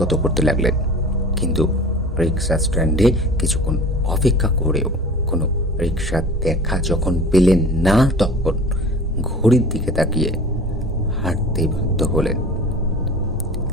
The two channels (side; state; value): both; normal; correlation 0.40